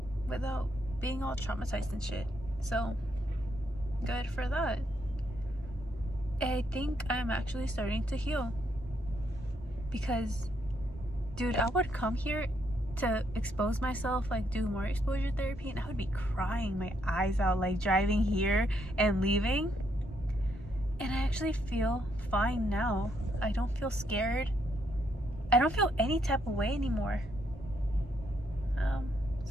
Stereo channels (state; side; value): normal; both; correlation 0.75